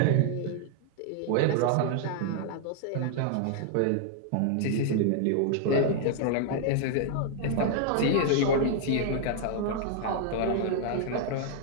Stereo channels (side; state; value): both; different; correlation 0.00